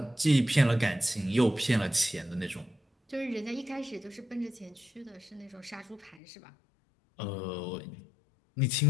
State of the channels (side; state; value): right; drops out; at 6.2 s